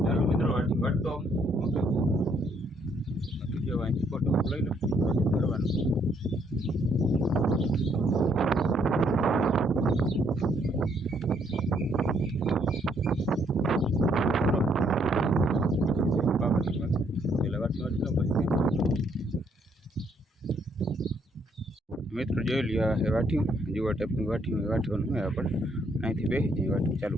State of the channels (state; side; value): normal; both; correlation 0.70